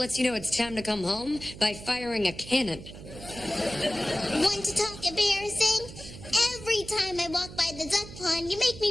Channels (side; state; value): right; noise; hum, 14 dB below the sound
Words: you know it's time to come home by firing a cannon. Want to talk embarrassing? Every time I walk by the duck pond, you make